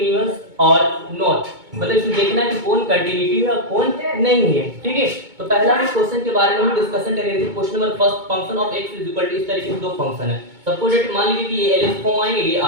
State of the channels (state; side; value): late; left; 2.2 ms